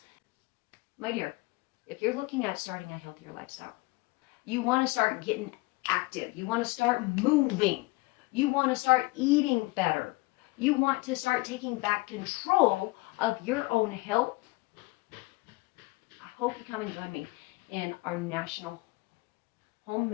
My dear, if you're looking at starting a healthier lifestyle, you want to start getting active. You want to start moving. You want to start eating better. You want to start taking back control of your own health. I hope you come and join me in our National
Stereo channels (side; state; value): right; quieter; 23.5 dB